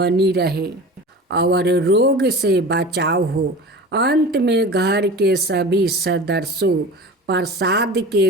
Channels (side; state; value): both; normal; correlation 0.35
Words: रहे और रोग से बचाव हो। अंत में घर के सभी सदस्यों प्रसाद के